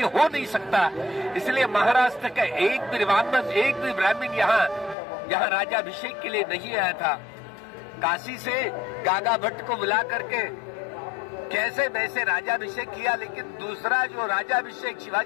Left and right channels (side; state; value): right; drops out; at 5.0 s